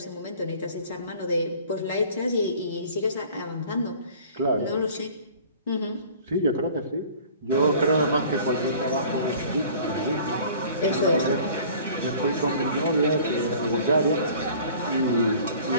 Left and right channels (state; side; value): inverted; both; correlation -0.48